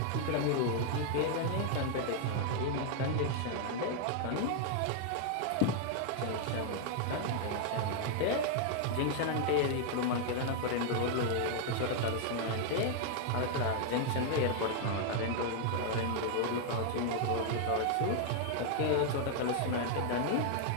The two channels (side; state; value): both; different; correlation 0.00